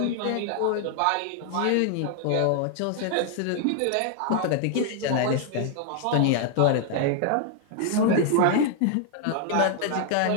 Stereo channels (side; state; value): both; different; correlation 0.00